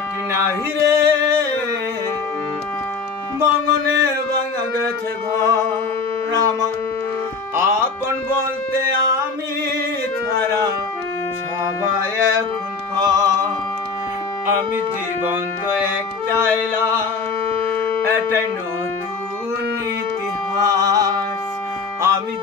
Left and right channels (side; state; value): right; quieter; 4.8 dB